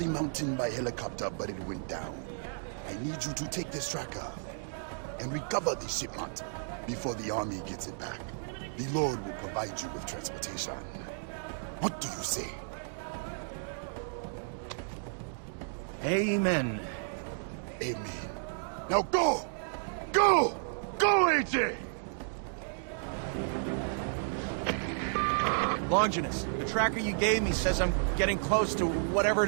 mountain by helicopter, but it went down. I need you to take this tracker and recover the shipment before the army gets it back. The Lord will provide you with transportation. What do you say? Amen. Amen. Now go! Go! Go, AJ! Longinus, the tracker you gave me says I'm getting close to whatever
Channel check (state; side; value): silent; left; digital silence